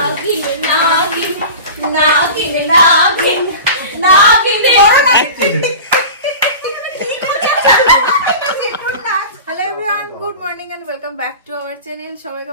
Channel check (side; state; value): both; inverted; correlation -0.34